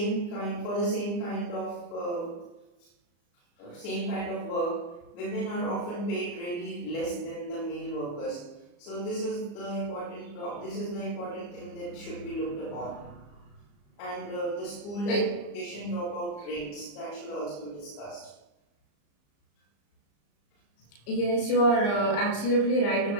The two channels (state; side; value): late; right; 34 ms